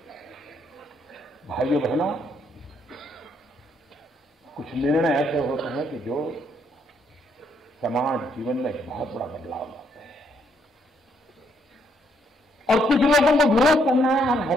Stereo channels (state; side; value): normal; both; correlation 0.72